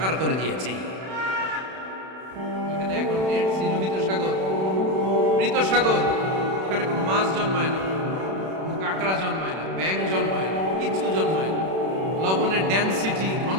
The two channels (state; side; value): late; left; 32 ms